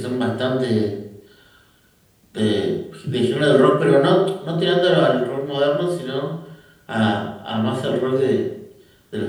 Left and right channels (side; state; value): both; identical; correlation 1.00